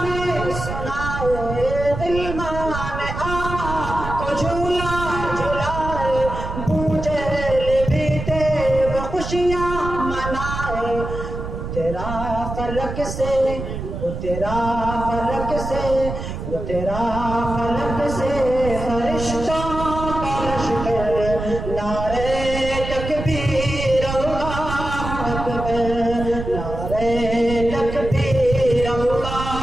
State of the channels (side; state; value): right; noise; rumble, 6 dB below the sound